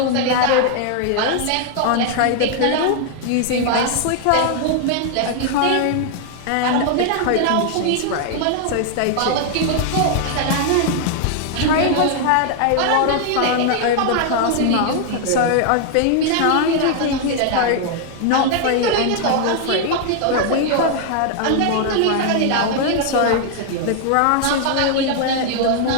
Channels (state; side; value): different; both; correlation 0.00